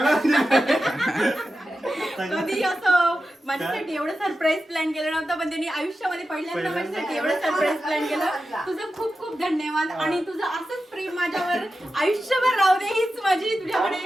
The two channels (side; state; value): both; normal; correlation 0.92